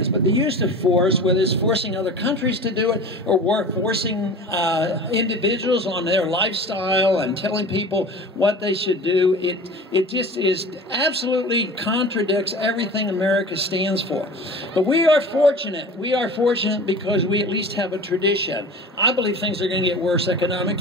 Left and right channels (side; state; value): both; normal; correlation 0.37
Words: But the use of force, whether it's forcing other countries to do it or forcing individuals on their lifestyle and telling people what they should do, it just absolutely contradicts everything America stands for. But we are fortunate. We are fortunate because we at least have a tradition. I believe things are going to get worse